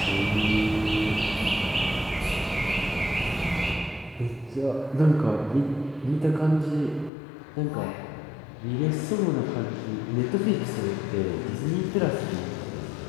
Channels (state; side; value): drops out; right; at 7.1 s